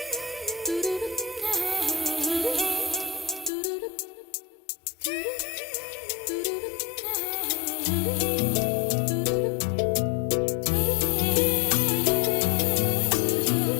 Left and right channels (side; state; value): right; drops out; at 3.5 s